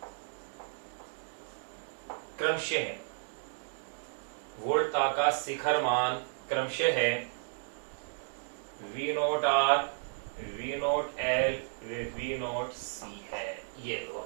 क्रमशः है। वोल्टता का शिखर मान क्रमशः है V naught R, V naught L, V naught C है। ये लो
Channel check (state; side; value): silent; left; digital silence